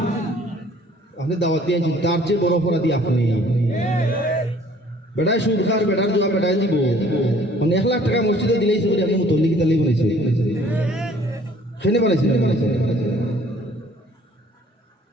আপনি দাওয়াত দিয়ে আনছেন, তার চেয়ে বড় অপরাধী আপনি। বেটায় সুদ খার, বেটার জোয়া বেটায় দিব, মানে 1 লাখ টাকা মসজিদে দিলেই সে আপনি মুতল্লিকি তালেই বানাইছে, সেনে বানাইছে।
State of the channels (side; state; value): both; normal; correlation 0.56